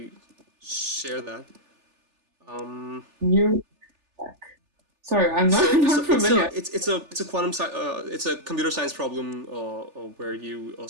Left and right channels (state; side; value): late; left; 3.4 ms